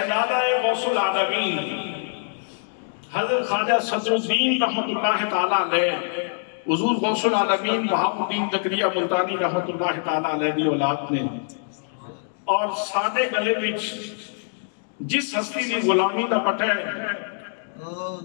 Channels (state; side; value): silent; right; digital silence